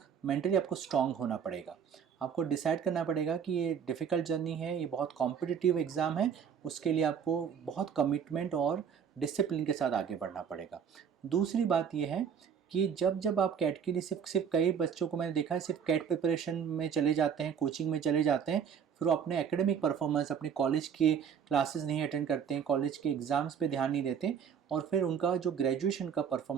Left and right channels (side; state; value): left; quieter; 7.5 dB